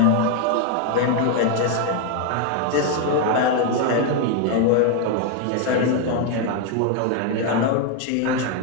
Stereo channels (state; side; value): different; both; correlation 0.01